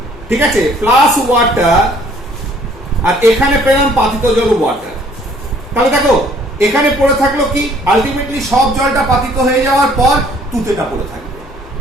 ঠিক আছে, প্লাস ওয়াটার, আর এখানে পেলাম পাতিত জল ওয়াটার। তাহলে দেখো এখানে পড়ে থাকলো কি? আলটিমেটলি সব জলটা পাতিত হয়ে যাওয়ার পর তুতেটা পড়ে থাকবে।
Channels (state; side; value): noise; left; hum, 22 dB below the sound